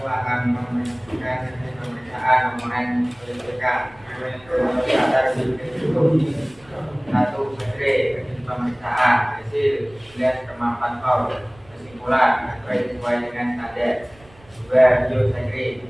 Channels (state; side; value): noise; right; rumble, 27 dB below the sound